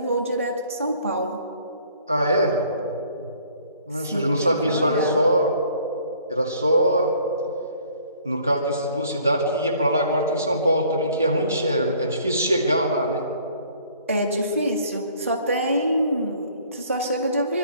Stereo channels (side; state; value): both; inverted; correlation -0.57